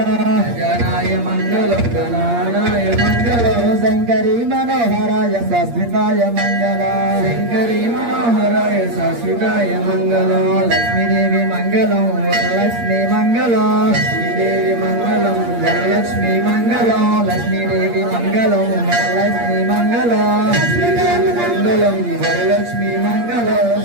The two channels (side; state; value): left; late; 8.6 ms